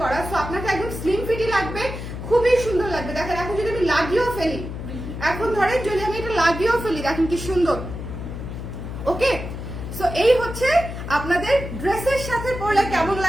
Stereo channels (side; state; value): left; noise; hum, 8 dB below the sound